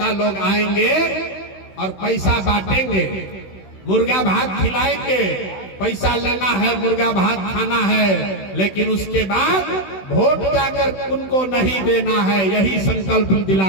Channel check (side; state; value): right; late; 16 ms